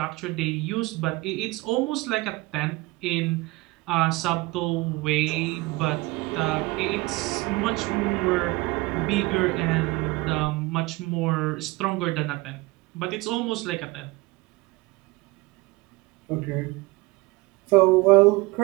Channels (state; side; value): quieter; left; 22.1 dB